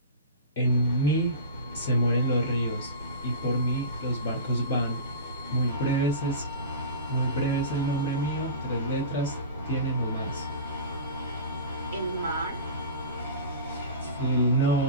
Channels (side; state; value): both; inverted; correlation -0.32